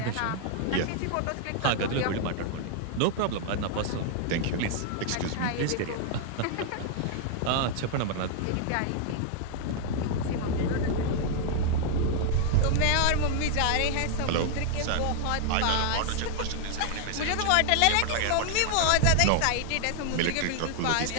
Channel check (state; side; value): different; both; correlation 0.00